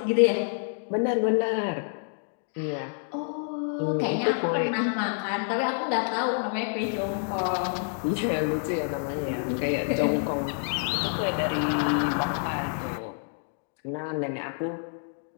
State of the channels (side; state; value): right; silent; 59 dB below the other